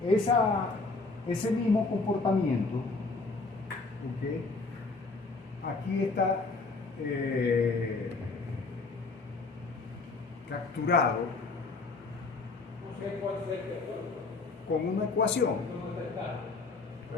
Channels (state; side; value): quieter; right; 3.8 dB